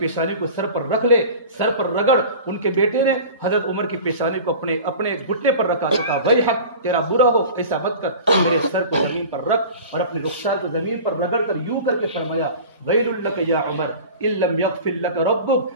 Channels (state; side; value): inverted; both; correlation -0.37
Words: پیشانی کو سر پر رکھ لے، سر پر رگڑ. ان کے بیٹے نے حضرت عمر کی پیشانی کو اپنے گھٹنے پر رکھا تو کہا وہی حق تیرا برا ہو، ایسا مت کر، میرے سر کو زمین پر رکھ اور اپنے رخسار کو زمین پر رگڑ کر یوں کر کے فرمایا ویل لک یا عمر ان لم یغفر لک ربک.